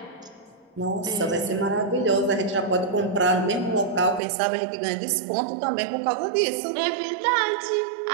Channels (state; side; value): drops out; left; at 4.2 s